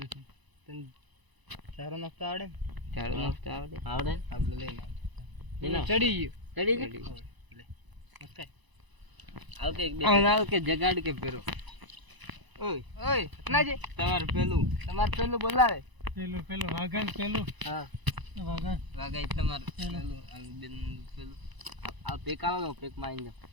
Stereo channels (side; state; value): left; late; 1.0 ms